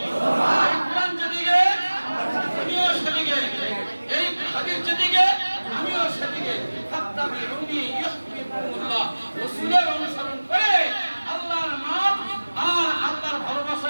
অনুসরণ করে আল্লাহর মাপ আর আল্লাহর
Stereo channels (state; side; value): inverted; both; correlation -1.00